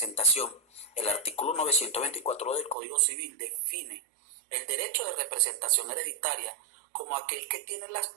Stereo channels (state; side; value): drops out; left; at 2.8 s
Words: el artículo 924 del Código Civil define el derecho de representación hereditaria como aquel que tienen